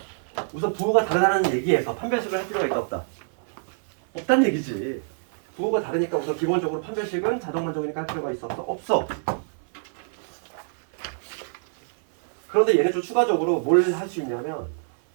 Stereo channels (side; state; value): left; silent; 58 dB below the other